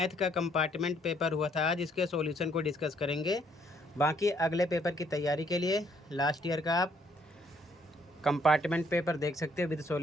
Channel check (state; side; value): normal; both; correlation 0.67